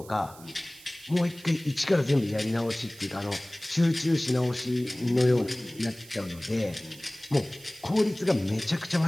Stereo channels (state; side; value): noise; right; hiss, 20 dB below the sound